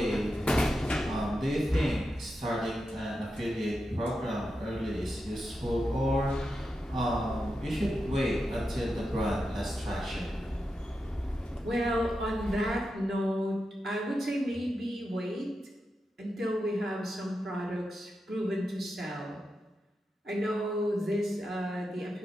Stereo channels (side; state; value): both; normal; correlation 0.88